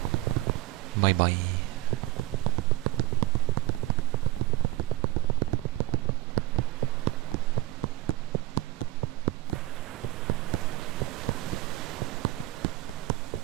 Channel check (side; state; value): left; quieter; 17.2 dB